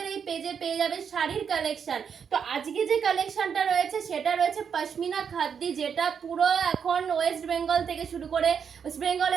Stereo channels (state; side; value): quieter; left; 7.0 dB